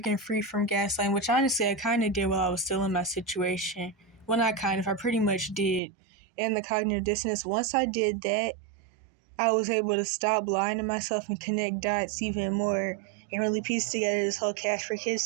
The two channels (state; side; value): drops out; left; at 5.8 s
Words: free from gaslighting, which honestly I kind of did while I was still in my situation. Well, not kind of, I pretty much did. And the cognitive dissonance, once I did that, I was able to stop lying to myself and connect dots even more and really piece together this whole Cash for Kids